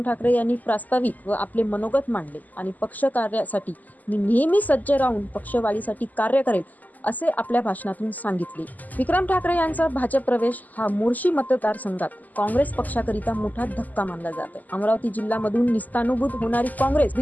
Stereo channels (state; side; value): late; right; 0.081 ms